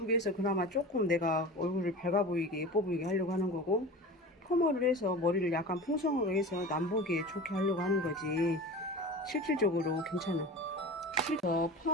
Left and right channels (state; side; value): normal; both; correlation 0.33